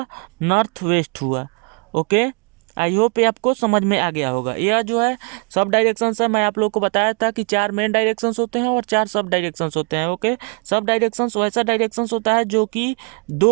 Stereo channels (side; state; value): left; quieter; 35.5 dB